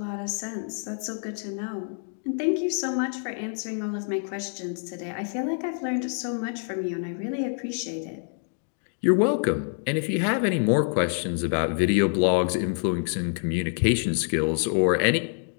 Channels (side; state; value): right; silent; 58 dB below the other